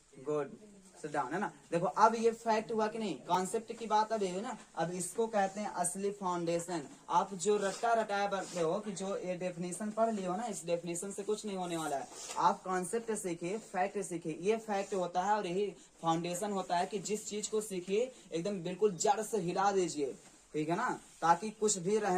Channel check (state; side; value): identical; both; correlation 1.00